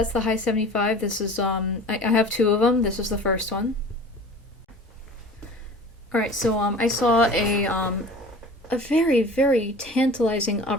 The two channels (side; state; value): both; normal; correlation 0.41